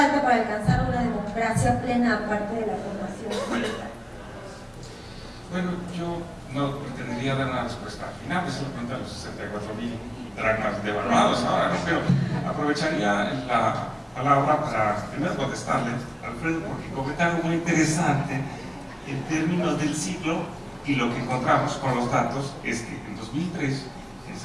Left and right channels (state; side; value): identical; both; correlation 1.00